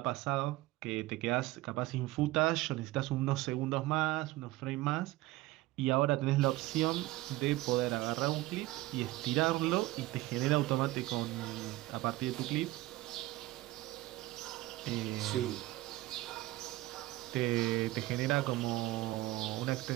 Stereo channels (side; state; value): left; quieter; 18.4 dB